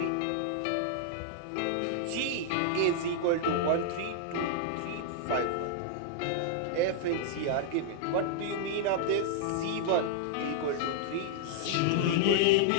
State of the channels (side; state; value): both; different; correlation -0.01